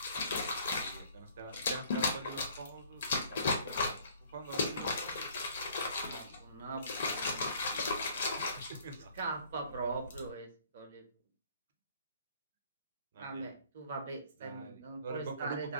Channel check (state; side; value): inverted; both; correlation -0.57